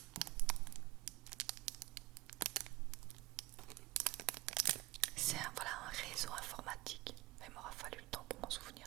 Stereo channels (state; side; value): quieter; left; 19.6 dB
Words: C'est voilà, un réseau informatique. Il m'aura fallu le temps pour m'en